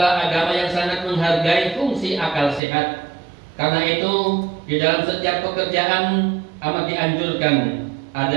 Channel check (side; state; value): left; drops out; at 2.6 s